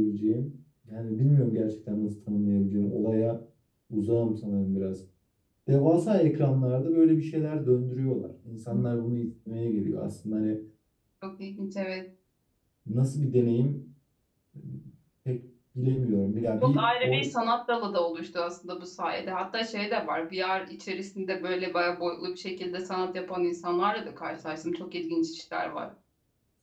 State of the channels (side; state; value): both; identical; correlation 1.00